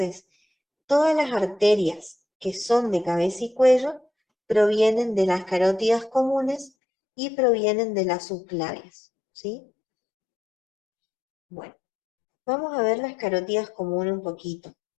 todas las arterias que son de cabeza y cuello provienen de las carótidas comunes y provienen de las subclavias, ¿sí? Bueno, vamos a ver las carótidas comunes un poquito.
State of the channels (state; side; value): drops out; right; at 6.7 s